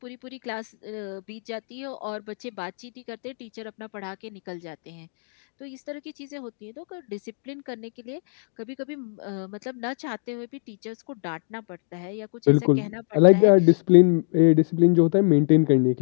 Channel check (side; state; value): right; silent; 60 dB below the other